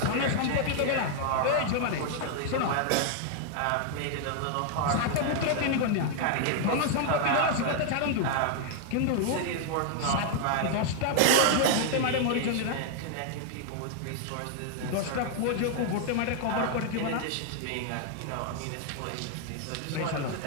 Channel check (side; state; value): both; different; correlation 0.00